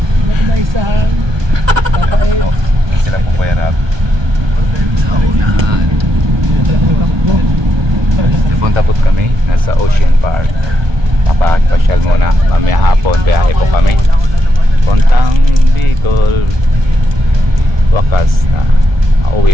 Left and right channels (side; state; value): left; late; 1.2 ms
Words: ko maisahan? Papait. oh, sila po Kuya Rab. Sa unahan. Napunta po kami. Nasa Ocean Park. Papasyal muna. Mamaya hapon, biyahe po kami. Puntang Bicol. Wakas na. Mauwi